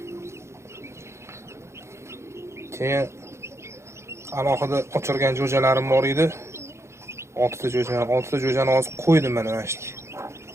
Keyin alohida ochirgan jo'jalarim bor edi. 6 ta jo'jani hozir qo'ydim mana shu.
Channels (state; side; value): late; left; 0.13 ms